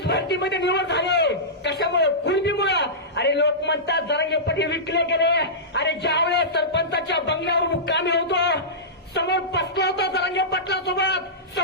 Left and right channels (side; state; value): both; normal; correlation -0.17